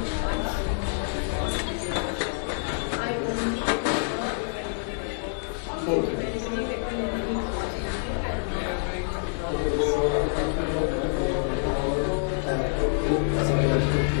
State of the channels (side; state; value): right; silent; 60 dB below the other